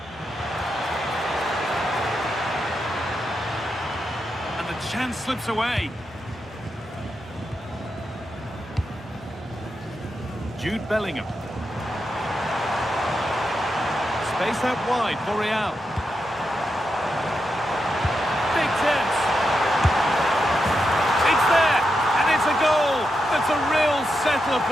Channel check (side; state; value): both; normal; correlation 0.86